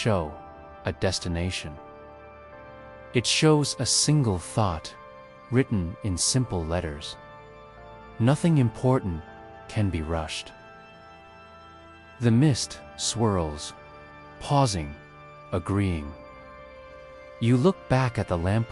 a destination. It shows a single thought written in simple letters. Nothing important can be rushed. The mist swirls, pausing, agreeing. You look back at the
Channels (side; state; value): both; identical; correlation 1.00